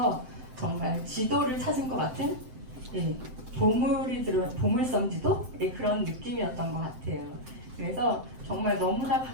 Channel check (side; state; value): left; late; 7.8 ms